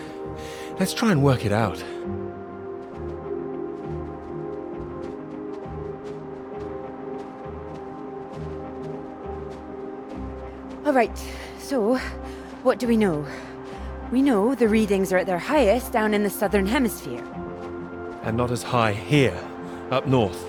Let's try and work it out. All right, so what do we know? We know the readings are at their highest down in the southern hemisphere. And not as high here, up north.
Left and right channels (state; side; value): identical; both; correlation 1.00